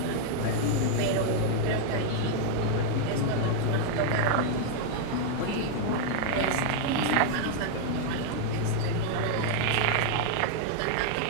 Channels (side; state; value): both; different; correlation 0.00